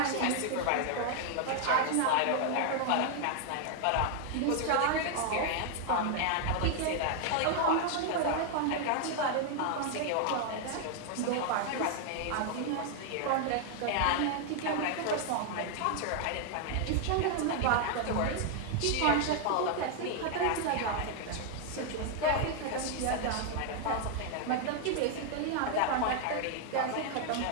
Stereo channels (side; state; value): both; different; correlation 0.00